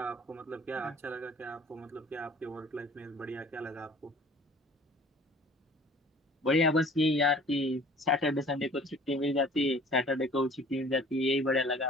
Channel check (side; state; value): both; normal; correlation 0.49